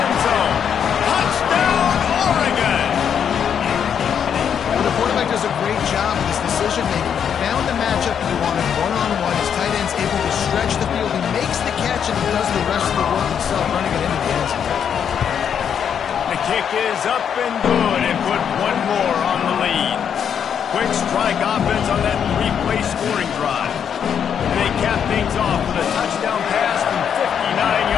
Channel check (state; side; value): quieter; right; 8.0 dB